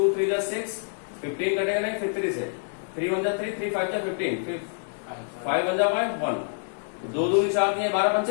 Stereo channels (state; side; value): silent; right; digital silence